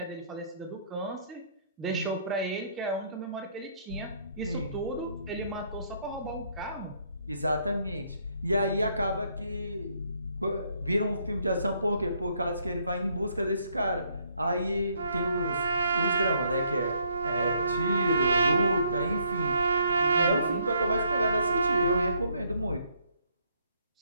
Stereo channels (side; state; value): both; inverted; correlation -0.69